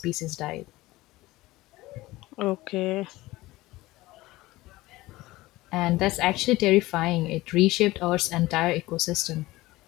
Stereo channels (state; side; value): quieter; right; 18.7 dB